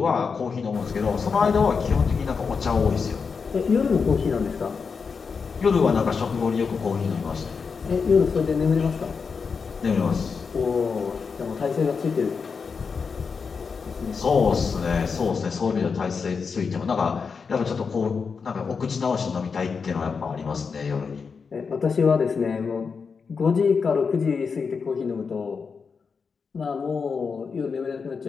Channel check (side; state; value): right; quieter; 5.4 dB